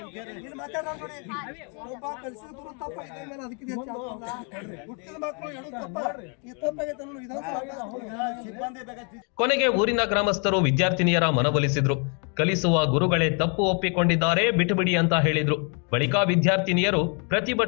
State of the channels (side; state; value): right; quieter; 38.0 dB